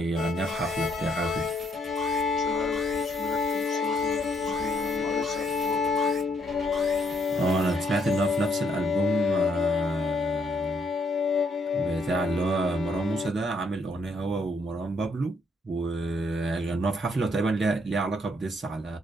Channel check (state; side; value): normal; both; correlation 0.71